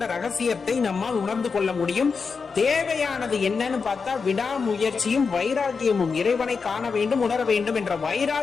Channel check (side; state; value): right; quieter; 5.1 dB